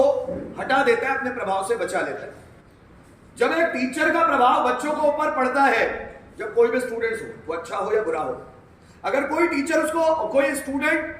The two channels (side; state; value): both; identical; correlation 1.00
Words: हटा देता है, अपने प्रभाव से बचा लेता है। जब एक टीचर का प्रभाव बच्चों को ऊपर पड़ता है, जब कोई भी स्टूडेंट्स हो, वो अच्छा हो या बुरा हो, अगर कोई टीचर कोई स्टूडेंट